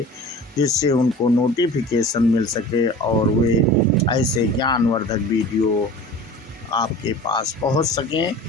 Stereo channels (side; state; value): both; normal; correlation 0.39